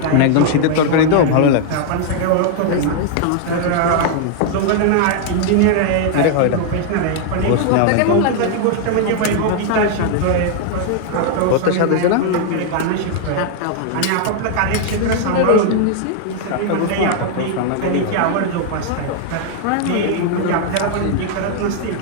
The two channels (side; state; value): both; different; correlation 0.00